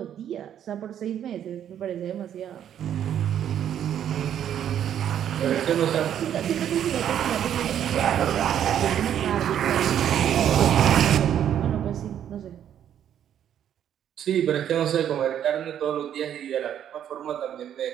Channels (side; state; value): left; quieter; 9.9 dB